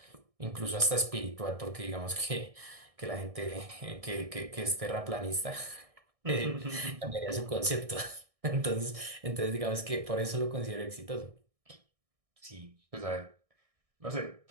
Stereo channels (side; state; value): left; late; 1.6 ms